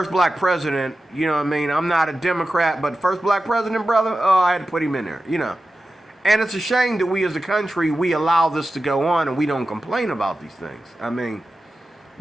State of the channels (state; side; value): normal; both; correlation 0.93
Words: black president, you know what I mean? I'm not a Democrat, but first black president, brother, oh, I had to put him in there, you know." And it's a shame that we as a country, we allow this to go on and we don't complain about these things. I mean,